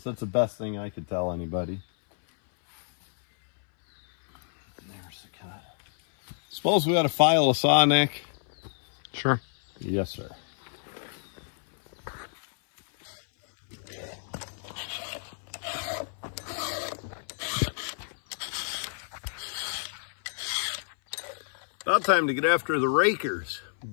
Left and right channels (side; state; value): right; silent; 59 dB below the other